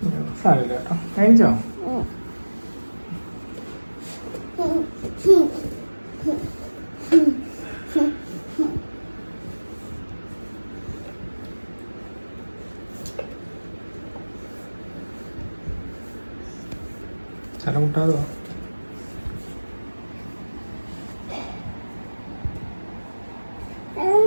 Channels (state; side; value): inverted; both; correlation -1.00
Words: സാരമില്ല കേട്ടോ. കഴിച്ചോ? തല മുട്ടാതോ?